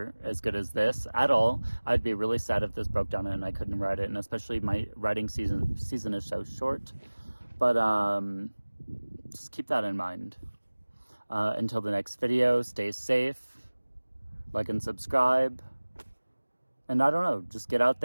as good as this at all. I'd be really sad if this broke down and I couldn't ride it, and especially my riding season is so short. But just keep that in mind. Until the next video, stay safe, like and subscribe, and I don't know, just get out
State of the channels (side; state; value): both; inverted; correlation -1.00